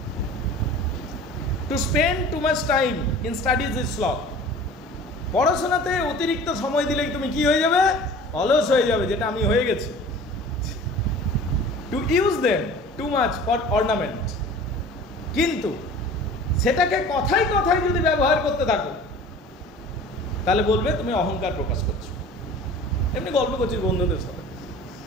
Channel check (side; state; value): both; normal; correlation 0.43